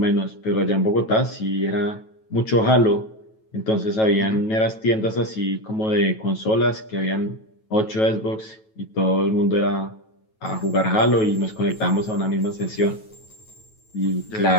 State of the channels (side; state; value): right; late; 9.2 ms